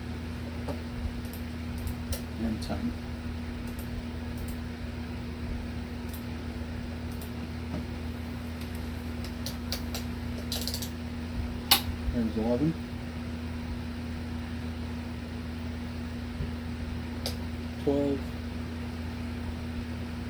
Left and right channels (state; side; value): identical; both; correlation 1.00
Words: and 10. There's 11. 12.